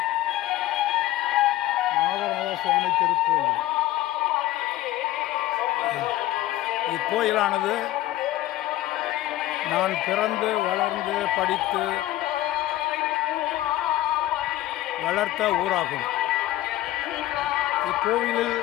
நாகநாத சுவாமி திருக்கோயில். இக்கோயிலானது நான் பிறந்து வளர்ந்து படித்து வளர்த்த ஊராகும். இக்கோவிலில்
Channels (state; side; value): quieter; right; 15.3 dB